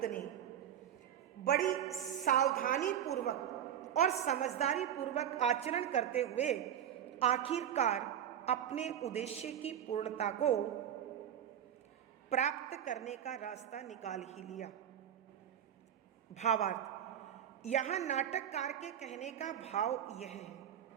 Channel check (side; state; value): left; quieter; 10.0 dB